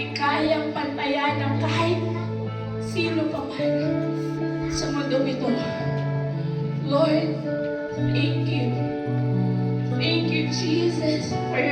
kayang pantayan ng kahit sino pa man sa mundo ito. Lord, thank you. Thank you, Jesus, for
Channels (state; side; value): identical; both; correlation 1.00